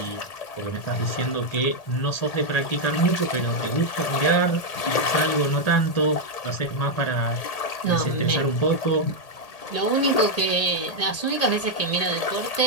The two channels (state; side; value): late; right; 1.8 ms